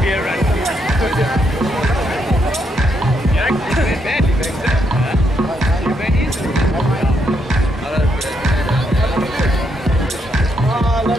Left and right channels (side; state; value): both; normal; correlation 0.77